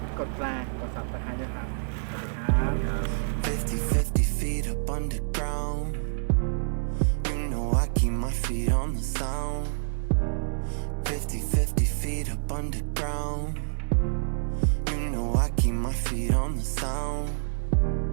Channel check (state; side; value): silent; left; 60 dB below the other